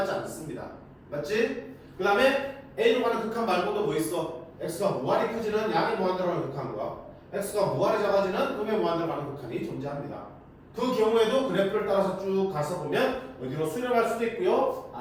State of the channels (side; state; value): both; identical; correlation 1.00